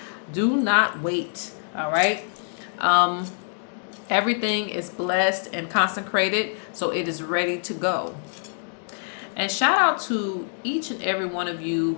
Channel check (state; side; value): silent; right; digital silence